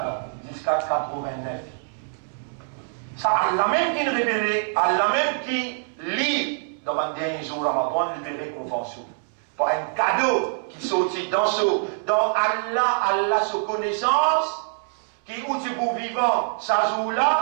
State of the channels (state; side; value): silent; left; 62 dB below the other